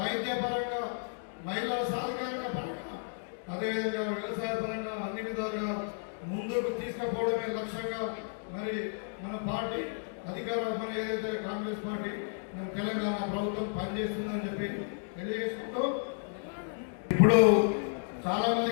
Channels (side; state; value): right; silent; digital silence